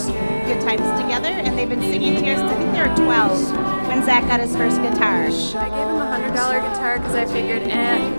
good times together, and they've been singing together since I think they were 12 when Zach got his first guitar. I gave him a $100 guitar because I figured,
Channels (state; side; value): inverted; both; correlation -1.00